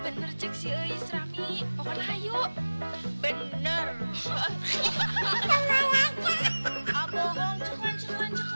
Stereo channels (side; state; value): both; inverted; correlation -1.00